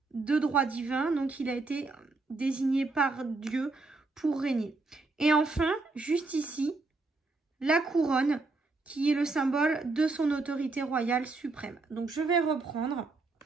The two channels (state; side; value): quieter; left; 3.5 dB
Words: de droit divin, donc il a été désigné par Dieu pour régner. Et enfin, juste ici, la couronne qui est le symbole de son autorité royale suprême. Donc, je vais reprendre.